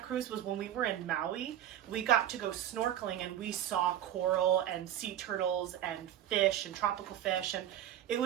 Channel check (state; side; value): quieter; left; 11.4 dB